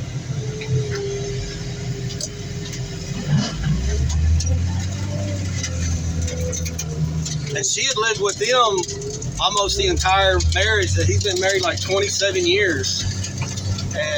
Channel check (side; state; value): both; identical; correlation 1.00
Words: And she had lived with them almost the entire marriage. That he's been married like 27 years.